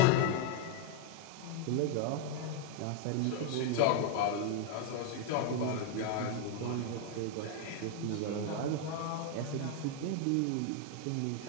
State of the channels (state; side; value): different; both; correlation 0.01